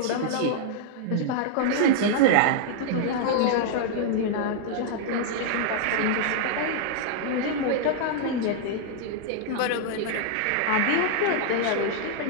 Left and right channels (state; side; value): different; both; correlation -0.01